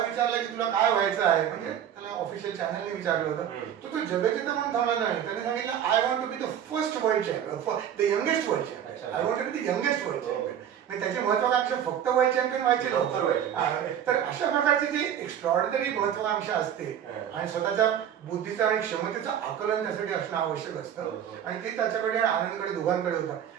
की तुला काय व्हायचं आहे. म्हणजे त्याला ऑफिशियल चॅनलने विचारलं होतं. तो जगजिता म्हणून थांबला नाही. त्याने सांगितलं I want to be the first world champion, the youngest world champion. I want to be the youngest world champion. म्हणजे त्याची महत्वाकांक्षा फक्त वर्ल्ड चॅम्पियन व्हायचे नव्हते. तर अशा प्रकारची जी एक्स्ट्रॉर्डिनरी महत्वाकांक्षा असते आणि स्वतःच्या बुद्धीचा आणि क्षमतेचं आकलन त्यासाठी असणं आवश्यक असतं. आणि ते त्याच्याकडे आनंदकडे दोघांकडे होतं.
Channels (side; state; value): left; quieter; 9.5 dB